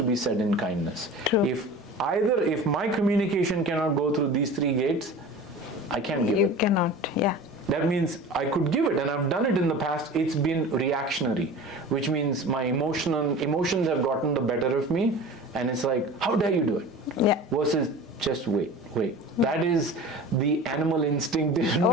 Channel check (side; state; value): both; normal; correlation 0.37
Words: be said in kindness. True. If my communication cannot go through these 3 gates, I can't give it. You cannot, yeah. That means I could give it, and I've done it in the past. It's been reactionary, which means my emotions have gotten the better of me, and it's like, how dare you do it? Yeah. Versus just wait. That is the animal instinct in